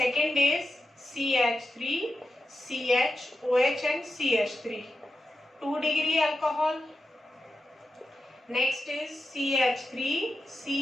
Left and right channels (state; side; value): normal; both; correlation 0.90